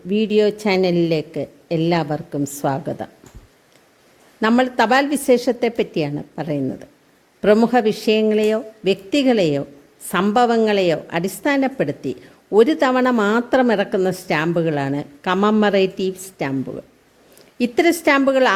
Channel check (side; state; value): both; identical; correlation 1.00